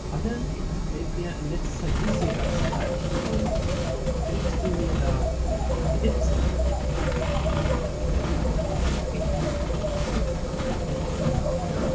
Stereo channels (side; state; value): both; identical; correlation 1.00